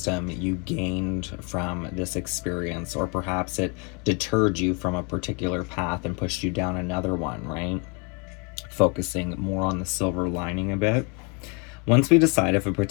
you gained from this experience, or perhaps it deterred you from a particular path and pushed you down another one, right? Focusing more on the silver lining a bit. Once we decide if a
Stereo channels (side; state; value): right; quieter; 33.2 dB